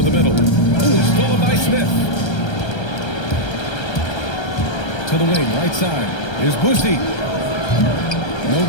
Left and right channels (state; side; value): late; right; 1.3 ms